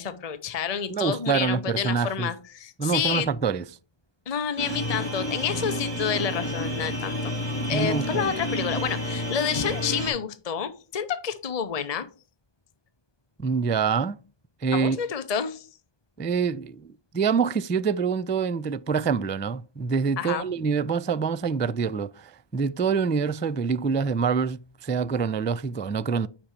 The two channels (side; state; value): right; late; 1.2 ms